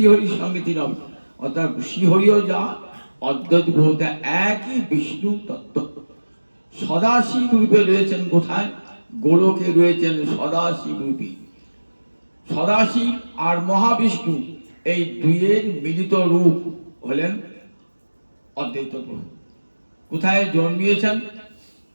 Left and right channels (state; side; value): inverted; both; correlation -1.00